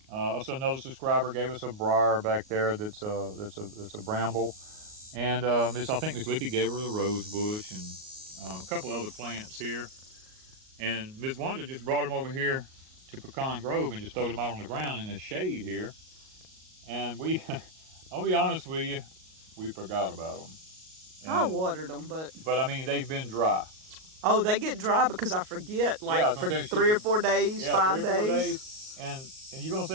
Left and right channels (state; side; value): late; left; 38 ms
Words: also another subscriber gave us a briar back there that's a bramble. And I think Miss Lippy gave her the rose bush and a couple other plants here. And Miss Wanda just brought them over here to Pecan Grove and just throwed them out on the ground in the shade here. And I'll be honest with you, we forgot about them. And I watered them, but I mean, they've been dry. Oh, they get dry because I forget, like, yeah, for 3 or 4 days, yeah, 5 3 or 4 days. And you're going to